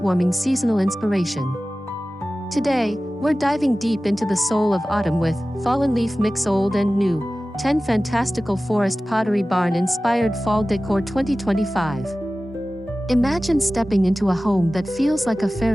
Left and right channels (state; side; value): normal; both; correlation 0.96